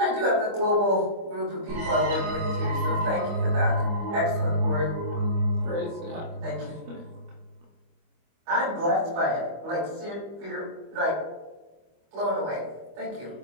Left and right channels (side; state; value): left; late; 25 ms